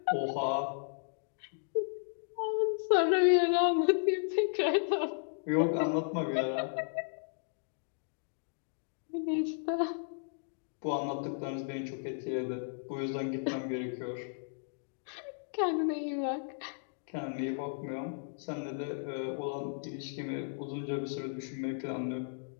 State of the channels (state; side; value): silent; right; digital silence